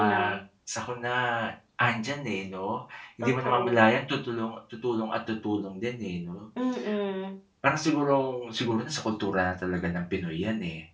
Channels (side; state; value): both; identical; correlation 1.00